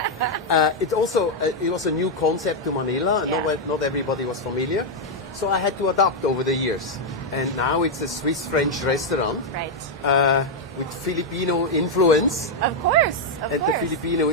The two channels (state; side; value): normal; both; correlation 0.00